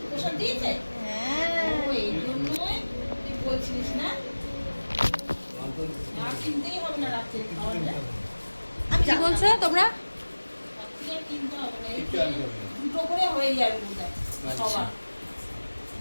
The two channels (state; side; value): inverted; both; correlation -1.00